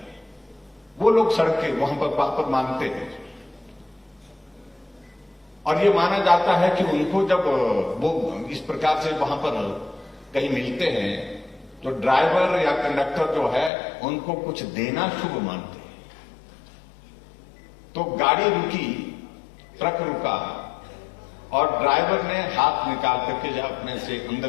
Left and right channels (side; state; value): right; drops out; at 13.7 s